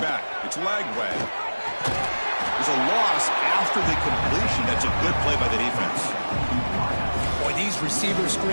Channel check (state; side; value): inverted; both; correlation -1.00